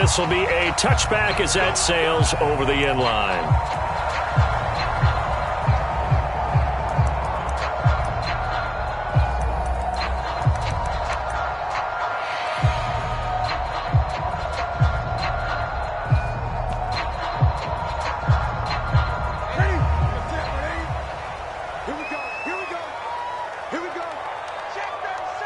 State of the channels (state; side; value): identical; both; correlation 1.00